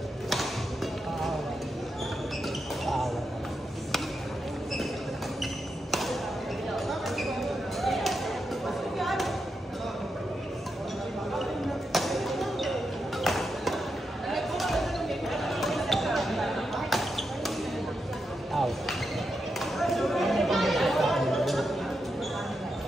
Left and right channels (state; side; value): normal; both; correlation 0.85